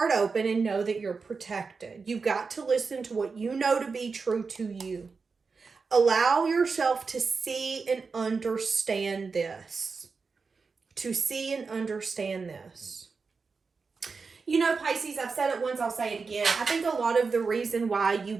open and know that you're protected. You've got to listen to what you know to be true to you. Allow yourself to see and understand this. To see and understand this. You know, Pisces, I've said it once, I'll say it again. I think a lot of the reason why you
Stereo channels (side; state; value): left; quieter; 4.8 dB